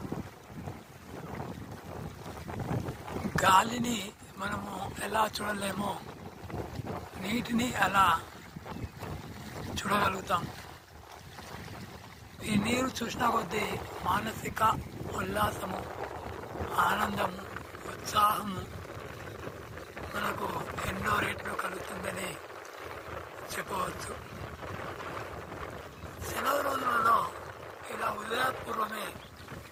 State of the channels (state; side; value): identical; both; correlation 1.00